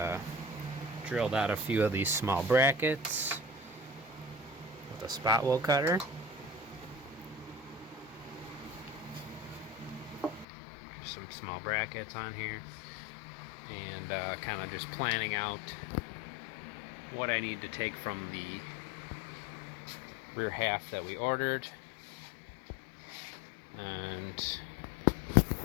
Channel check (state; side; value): drops out; right; at 10.5 s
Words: drilled out a few of these small brackets with a spot wheel cutter. Some small brackets on here, and kind of just planning out what I need to take from the rear half that we ordered and